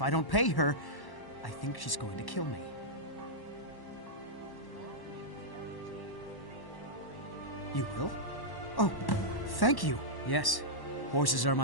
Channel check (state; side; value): late; right; 1.1 ms